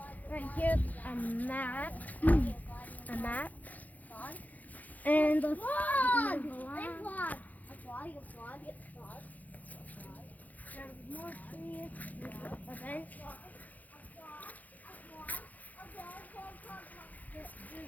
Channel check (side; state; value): right; late; 0.079 ms